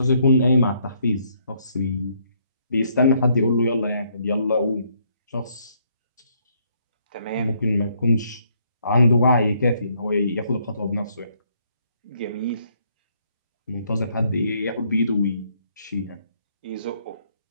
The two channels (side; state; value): both; inverted; correlation -0.70